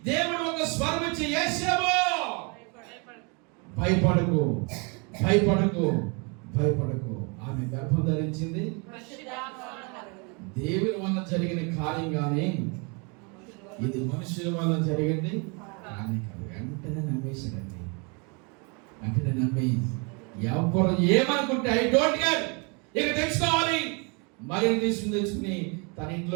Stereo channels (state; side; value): quieter; left; 32.8 dB